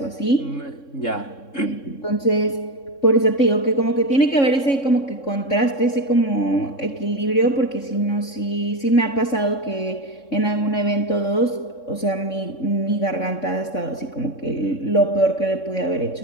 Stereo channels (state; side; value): late; right; 3.6 ms